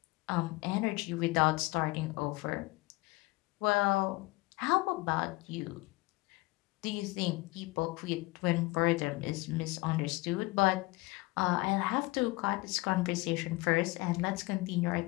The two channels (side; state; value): right; quieter; 22.5 dB